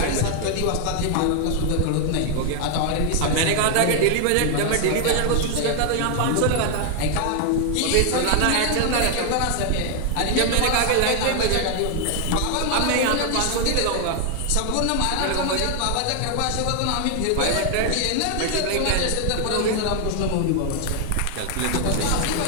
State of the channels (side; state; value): both; different; correlation 0.00